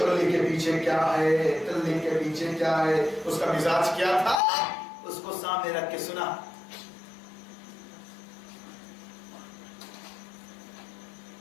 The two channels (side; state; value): right; drops out; at 4.4 s